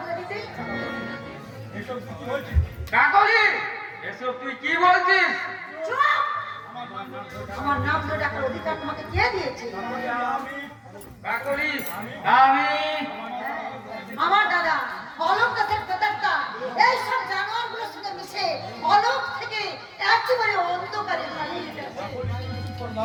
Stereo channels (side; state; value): both; identical; correlation 1.00